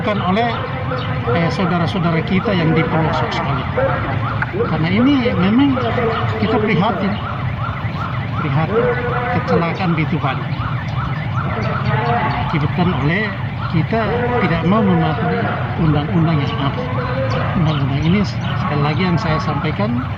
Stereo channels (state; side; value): identical; both; correlation 1.00